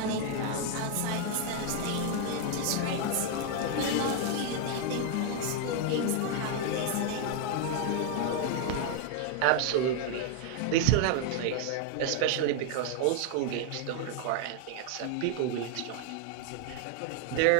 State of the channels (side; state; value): both; different; correlation 0.00